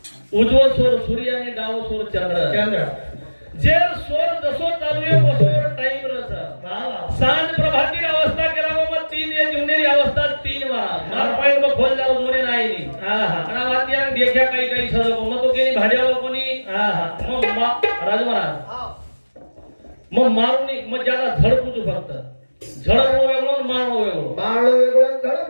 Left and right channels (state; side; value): inverted; both; correlation -1.00